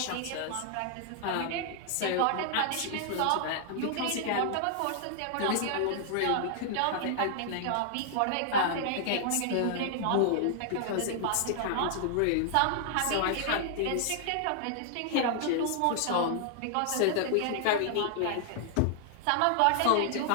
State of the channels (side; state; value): both; different; correlation -0.01